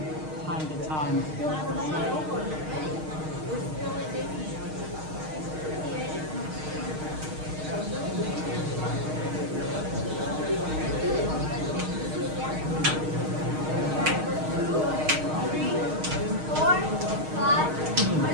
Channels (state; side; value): late; left; 6.5 ms